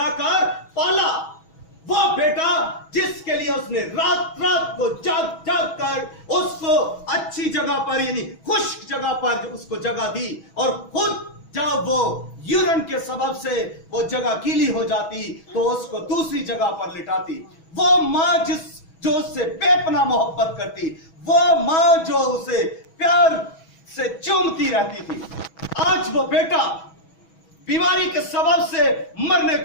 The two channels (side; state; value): right; late; 6.2 ms